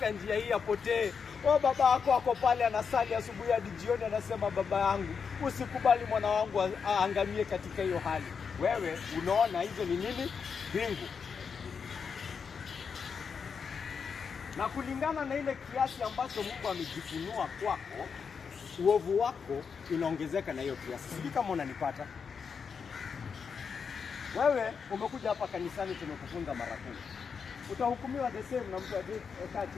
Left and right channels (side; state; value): right; quieter; 6.1 dB